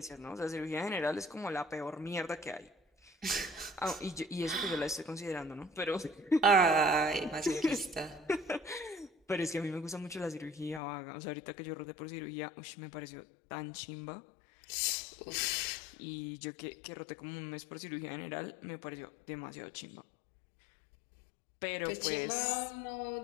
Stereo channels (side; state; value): right; drops out; at 10.8 s